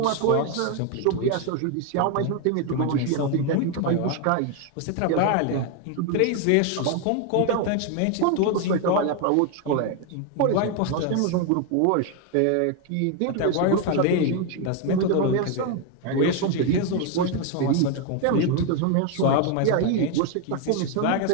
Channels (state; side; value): different; both; correlation 0.01